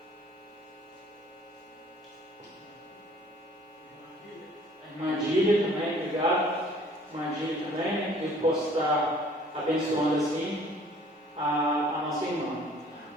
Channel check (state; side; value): normal; both; correlation 0.54